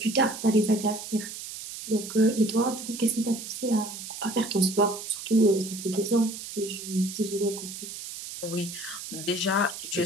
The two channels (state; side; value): noise; right; hiss, 10 dB below the sound